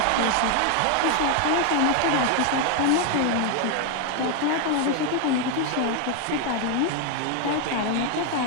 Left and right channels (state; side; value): different; both; correlation 0.01